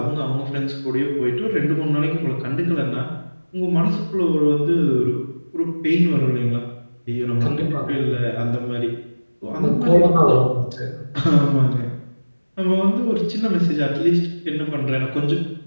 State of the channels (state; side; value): inverted; both; correlation -1.00